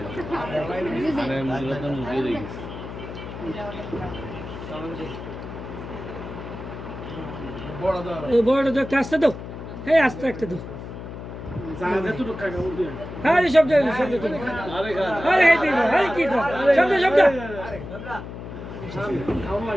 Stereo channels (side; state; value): left; noise; hum, 10 dB below the sound